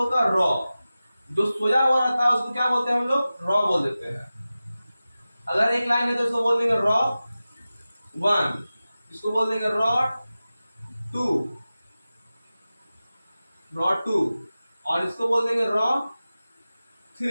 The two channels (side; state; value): both; inverted; correlation -0.95